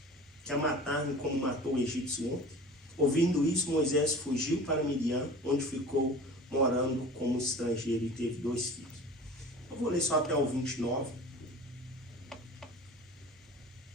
que a matar-me como matou o egípcio ontem? Ouvindo isso, Moisés fugiu para Midian, onde ficou morando como estrangeiro e teve 2 filhos. Eu vou ler só até o 29.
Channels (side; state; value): both; normal; correlation 0.40